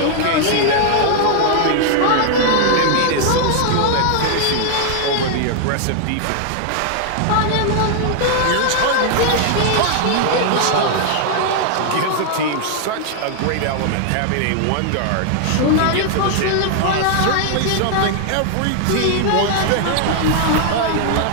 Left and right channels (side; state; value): both; different; correlation 0.00